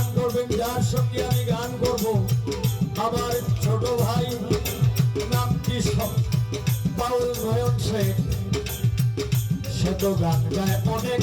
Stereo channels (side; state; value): both; identical; correlation 1.00